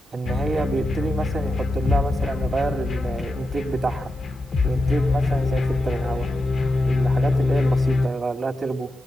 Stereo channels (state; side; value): normal; both; correlation 0.89